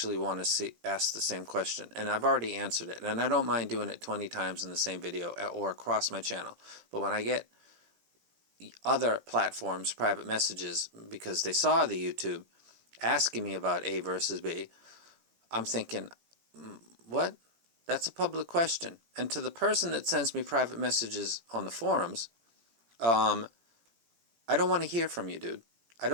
want to ask the same question, and I've already answered it, and I don't mind doing it 20 times in the same video or across my channel. But when I get other platforms private messages because they saw the YouTube asking me about A versus B, I'm thinking, what? That's a public question. And to the person that sends me private messages on the forums, I don't want to hear from you, dude. I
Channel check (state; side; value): late; left; 17 ms